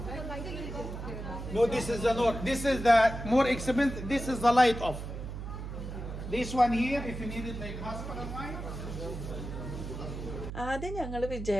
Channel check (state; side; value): noise; right; hum, 8 dB below the sound